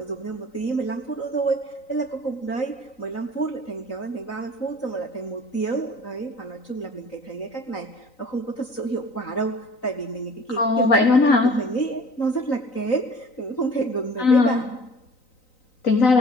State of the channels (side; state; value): right; late; 3.9 ms